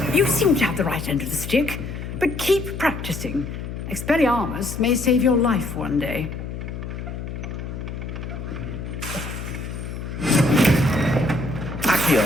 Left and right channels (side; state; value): left; noise; hum, 7 dB below the sound